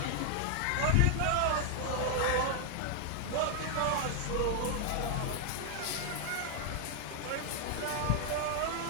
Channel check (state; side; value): different; both; correlation 0.00